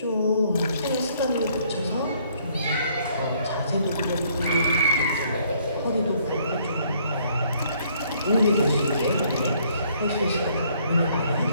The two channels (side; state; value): both; inverted; correlation -0.65